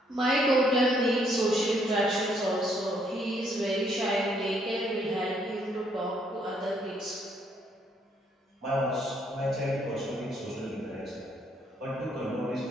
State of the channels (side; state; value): both; normal; correlation 0.70